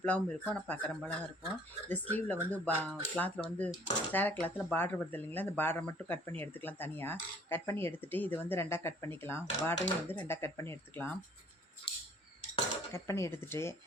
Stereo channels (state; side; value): normal; both; correlation 0.57